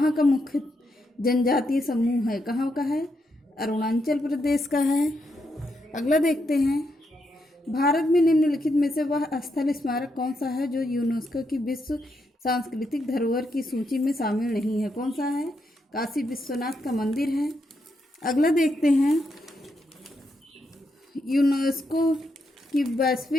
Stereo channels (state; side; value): normal; both; correlation 0.81